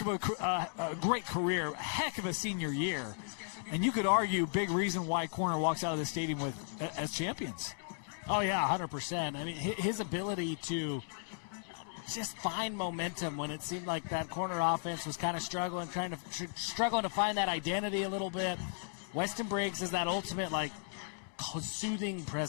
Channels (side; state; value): right; silent; digital silence